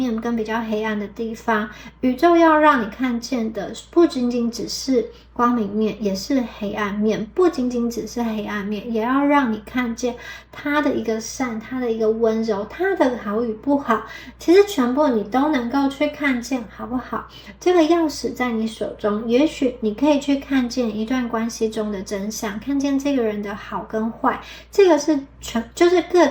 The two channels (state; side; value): identical; both; correlation 1.00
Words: 跟比较黑暗的地方。宇宙要让你看见的不仅仅只是光明面，也是黑暗面，不仅仅只是黑暗面，也要让你看见它的一个善，它的一个温柔，它的好与不好，其实全部你都能够去看见，好不好？这个钥匙在你手中，也许你可以去看见一段关系中的真相，看见这个人的好跟坏，这个是就是各